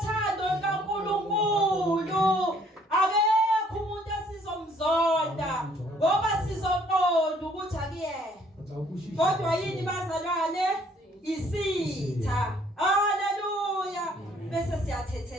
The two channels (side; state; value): both; normal; correlation 0.62